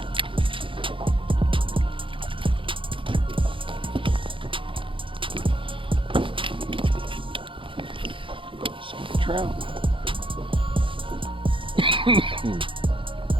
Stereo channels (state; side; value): late; left; 0.25 ms